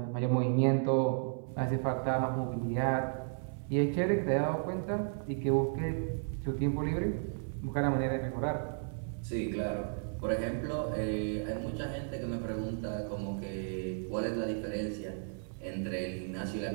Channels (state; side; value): silent; left; digital silence